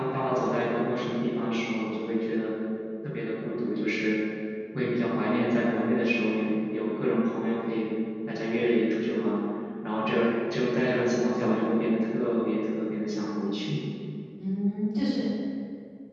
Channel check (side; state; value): both; identical; correlation 1.00